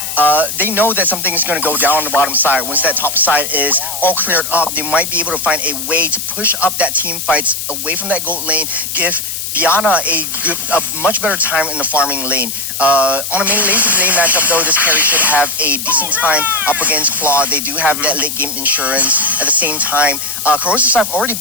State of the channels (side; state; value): left; noise; hiss, 5 dB below the sound